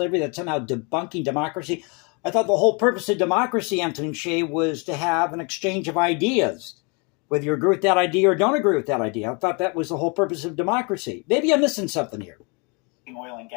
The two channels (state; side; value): quieter; right; 32.2 dB